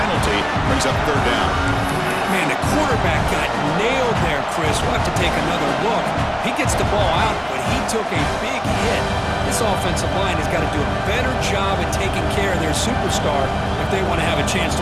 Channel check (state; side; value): identical; both; correlation 1.00